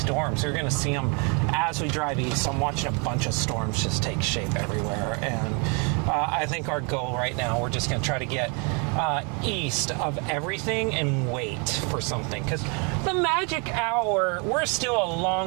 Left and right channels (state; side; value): quieter; left; 34.4 dB